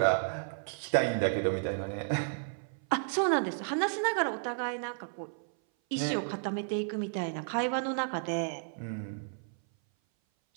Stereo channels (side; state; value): left; silent; 56 dB below the other